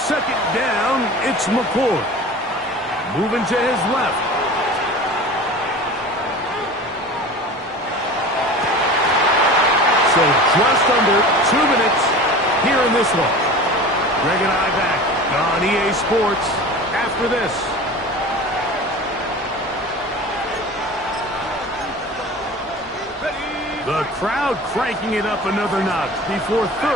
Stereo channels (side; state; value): both; normal; correlation 0.37